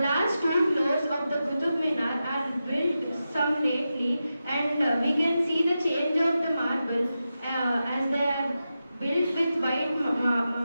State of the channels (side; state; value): both; inverted; correlation -0.91